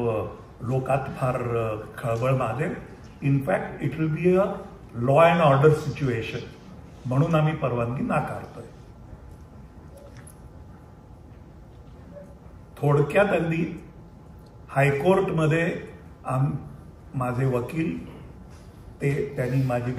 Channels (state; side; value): identical; both; correlation 1.00